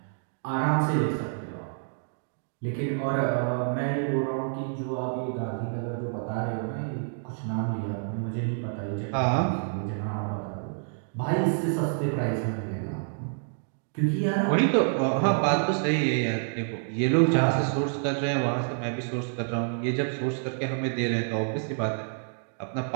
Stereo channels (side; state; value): left; silent; digital silence